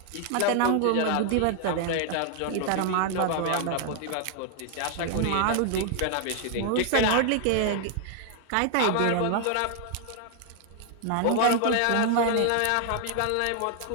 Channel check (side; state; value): both; different; correlation 0.00